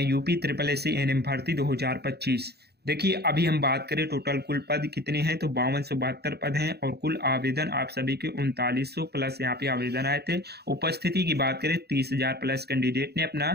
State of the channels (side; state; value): left; late; 0.47 ms